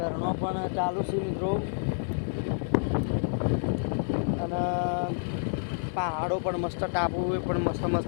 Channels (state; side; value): silent; right; digital silence